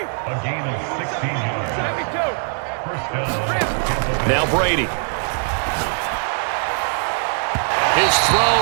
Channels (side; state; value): left; silent; 56 dB below the other